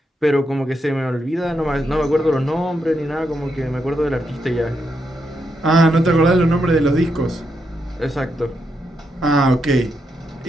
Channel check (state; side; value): normal; both; correlation 0.82